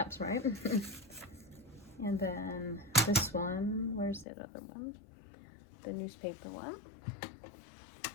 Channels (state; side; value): drops out; right; at 4.2 s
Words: right? And then this one, where's the other one? The newspaper one.